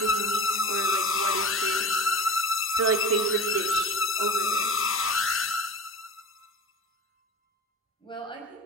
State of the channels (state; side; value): normal; both; correlation 0.32